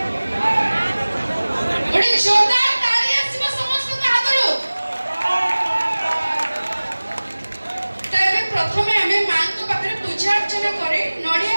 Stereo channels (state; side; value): inverted; both; correlation -1.00